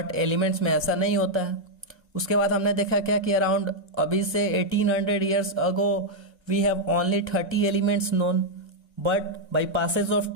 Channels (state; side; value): late; left; 1.3 ms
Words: एलिमेंट्स में ऐसा नहीं होता है। उसके बाद हमने देखा क्या कि अराउंड अभी से 1800 years ago we have only 30 elements known, but by passage of